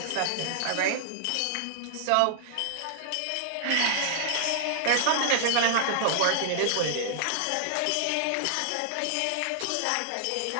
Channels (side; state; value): both; different; correlation -0.01